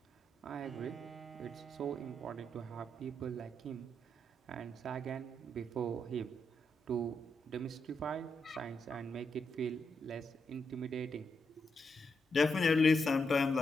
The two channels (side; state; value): both; normal; correlation 0.82